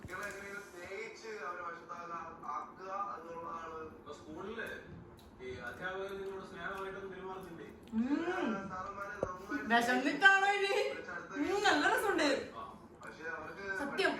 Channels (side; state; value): both; identical; correlation 1.00